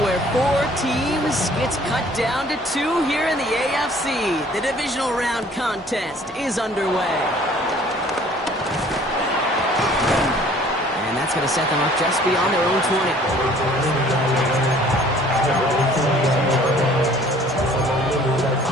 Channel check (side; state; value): both; normal; correlation 0.54